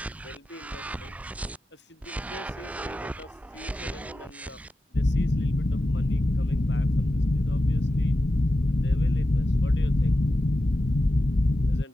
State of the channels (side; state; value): both; normal; correlation 0.92